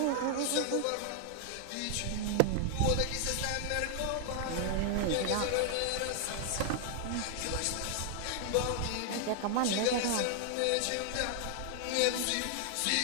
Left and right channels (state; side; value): different; both; correlation 0.00